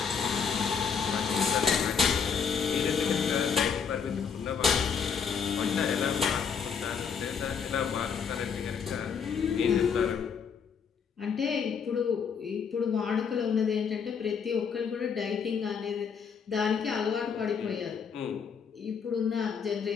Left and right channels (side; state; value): right; quieter; 6.5 dB